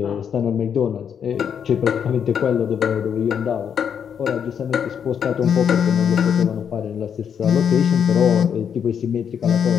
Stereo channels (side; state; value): right; quieter; 7.8 dB